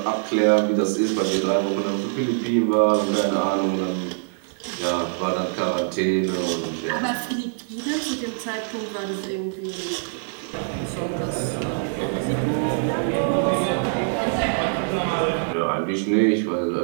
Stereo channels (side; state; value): left; silent; 63 dB below the other